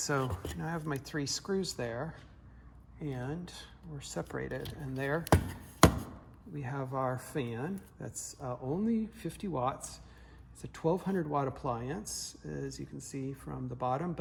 now I have my 3 screws there, and we're separated. And there we have our fan. That's only 50 watts. It's a 1200 watt appliance, as you can see from the bottom,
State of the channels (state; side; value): identical; both; correlation 1.00